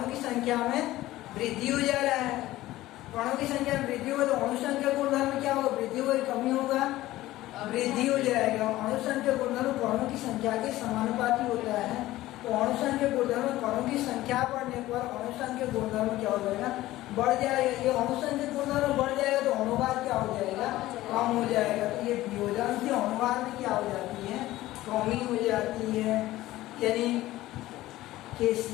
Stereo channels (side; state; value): right; quieter; 16.3 dB